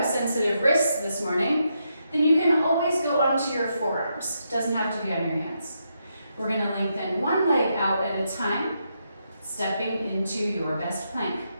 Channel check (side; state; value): both; inverted; correlation -0.81